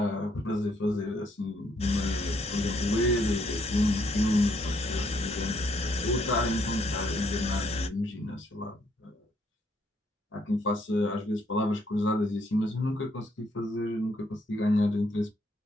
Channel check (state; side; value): normal; both; correlation 0.71